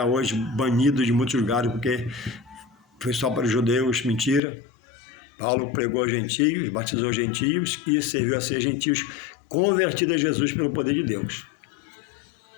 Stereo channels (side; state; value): right; drops out; at 4.4 s